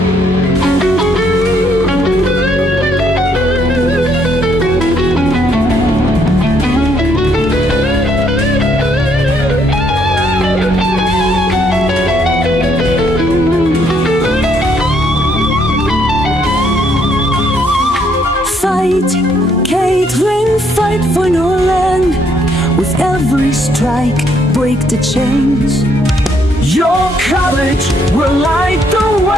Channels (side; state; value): both; normal; correlation 0.70